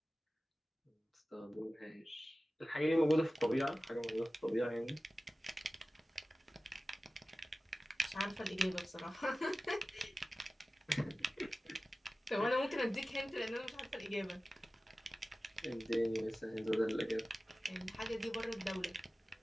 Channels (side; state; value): both; normal; correlation 0.96